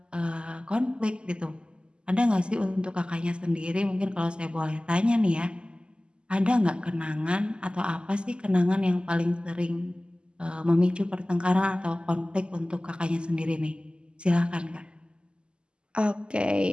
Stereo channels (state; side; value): late; left; 0.049 ms